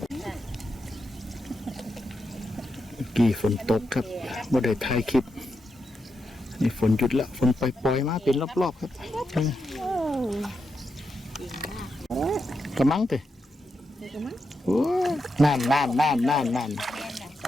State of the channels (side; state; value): both; normal; correlation 0.85